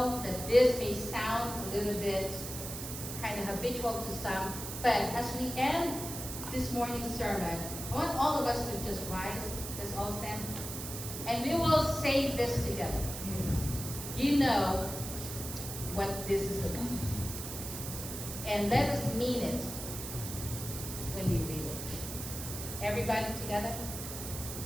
that this may sound a little bit kind of habitual to some, but as we end this morning's sermon, I want all of us to just rise. Let's all stand. And we will say this together. You know what this is about. And let us mean it when we read it. Everybody together?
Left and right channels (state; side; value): noise; right; hiss, 7 dB below the sound